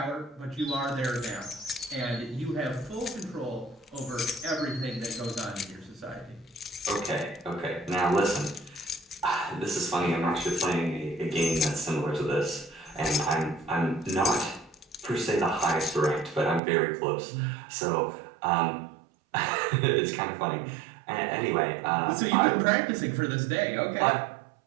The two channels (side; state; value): left; drops out; at 16.6 s